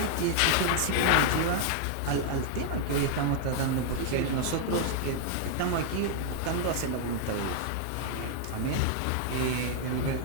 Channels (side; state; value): both; different; correlation 0.00